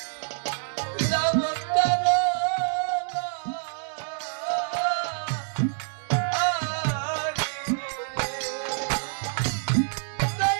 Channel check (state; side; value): silent; left; digital silence